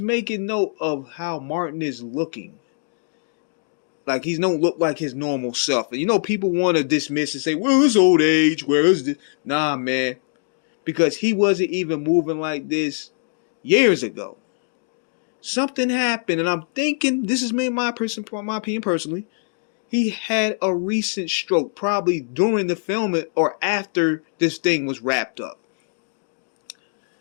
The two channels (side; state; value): right; silent; digital silence